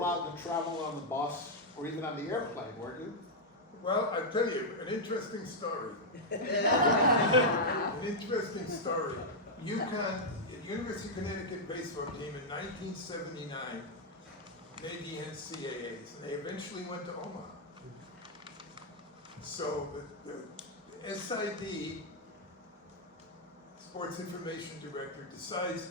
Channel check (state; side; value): normal; both; correlation -0.04